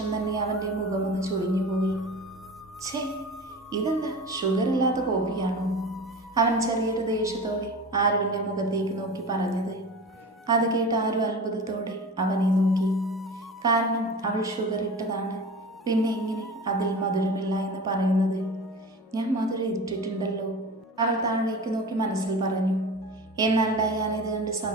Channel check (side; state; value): both; normal; correlation 0.33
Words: തന്നെ അവൻ്റെ മുഖമൊന്ന് ചുളിഞ്ഞുപോയി. ഛേ, ഇതെന്താ ഷുഗർ ഇല്ലാത്ത കോഫിയാണോ? അവൻ ചെറിയൊരു ദേഷ്യത്തോടെ ആരുവിൻ്റെ മുഖത്തേക്ക് നോക്കി പറഞ്ഞത്. അത് കേട്ട് ആരു അത്ഭുതത്തോടെ അവനെ നോക്കി. കാരണം അവൾ ഷുഗർ ഇട്ടതാണ്. പിന്നെ എങ്ങനെ അതിൽ മധുരമില്ല എന്ന് പറയുന്നത്? ഞാൻ മധുരം ഇട്ടിട്ടുണ്ടല്ലോ, അവൾ താഴേക്ക് നോക്കി മനസ്സിൽ പറഞ്ഞു. എന്നാൽ ഡയാന ഇത് കണ്ട്